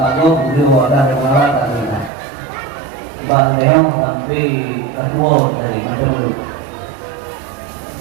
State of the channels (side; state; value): left; drops out; at 2.1 s